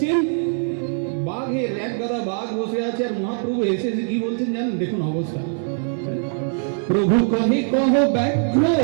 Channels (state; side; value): silent; left; 64 dB below the other